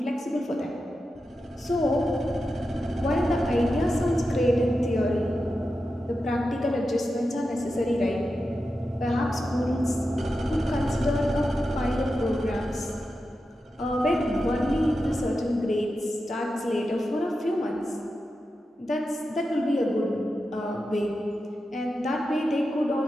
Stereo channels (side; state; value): both; normal; correlation 0.90